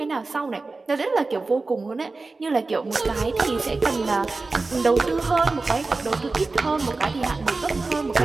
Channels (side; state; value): left; quieter; 3.6 dB